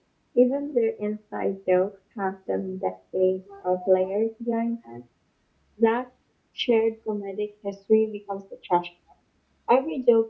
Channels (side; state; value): both; identical; correlation 1.00